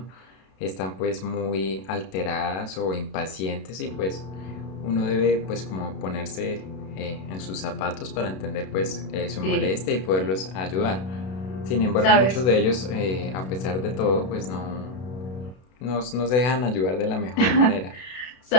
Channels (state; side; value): late; right; 32 ms